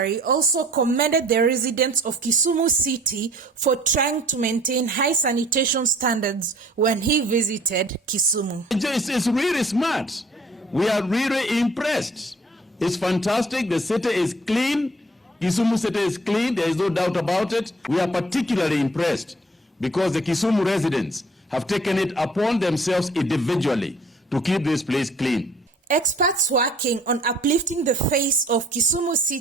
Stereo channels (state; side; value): normal; both; correlation 0.54